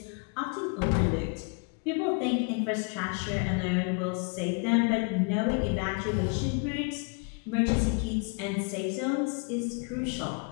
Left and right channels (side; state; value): right; quieter; 37.5 dB